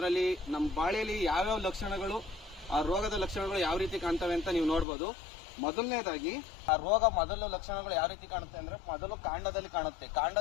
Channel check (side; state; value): right; drops out; at 4.9 s